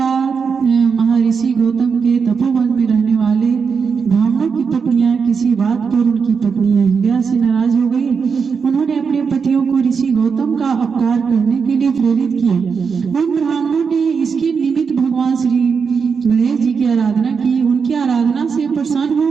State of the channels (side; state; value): left; quieter; 5.8 dB